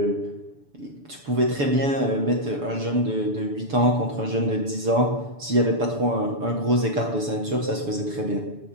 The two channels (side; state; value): left; late; 7.0 ms